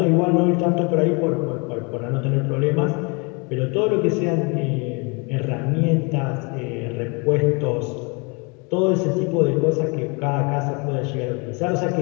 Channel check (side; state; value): right; quieter; 31.0 dB